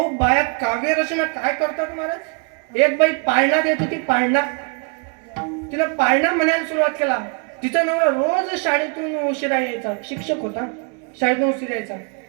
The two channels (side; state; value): left; quieter; 36.3 dB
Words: बाया काव्य रचना काय करतात महाराज. एक बाई पाळणा देत होती, पाळणा. तिला पाळणा म्हणायला सुरुवात केला. तिचा नवरा रोज शाळेतून उशिरा यायचा, शिक्षक होता, शाळेतून उशिरा यायचा.